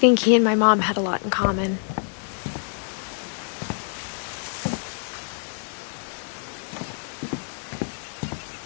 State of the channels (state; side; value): silent; right; 61 dB below the other